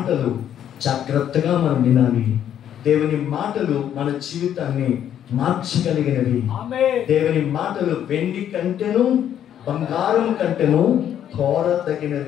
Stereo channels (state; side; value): quieter; right; 10.1 dB